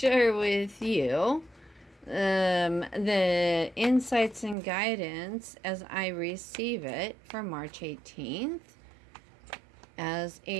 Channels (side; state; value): left; drops out; at 4.5 s